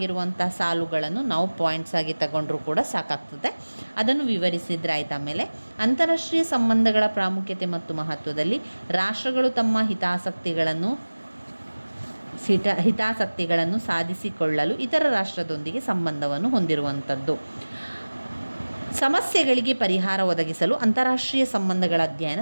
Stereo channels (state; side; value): inverted; both; correlation -1.00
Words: ಸಾಲುಗಳನ್ನು ನಾವು ಪಾಯಿಂಟ್ಸ್ ಆಗಿ ತಗೊಂಡ್ರೂ ಕೂಡ ಸಾಕಾಗ್ತದೆ, ಅದನ್ನು ವಿವರಿಸಿದ್ರೆ ಆಯ್ತು. ಆಮೇಲೆ ಅಂತಾರಾಷ್ಟ್ರೀಯ ಸಂಬಂಧಗಳ ಪ್ರಾಮುಖ್ಯತೆ ಮತ್ತು ಮಹತ್ವದಲ್ಲಿ ರಾಷ್ಟ್ರಗಳು ತಮ್ಮ ಹಿತಾಸಕ್ತಿಗಳನ್ನು ಸಾಧಿಸಿಕೊಳ್ಳಲು ಇತರ ರಾಷ್ಟ್ರದೊಂದಿಗೆ ಸಂಬಂಧವನ್ನು ಹೊಂದಿರುವಂಥದ್ದು, ಸಮಸ್ಯೆಗಳಿಗೆ ಪರಿಹಾರ ಒದಗಿಸಲು ಅಂತಾರಾಷ್ಟ್ರೀಯ ಸಂಬಂಧಗಳ ಅಧ್ಯಯನ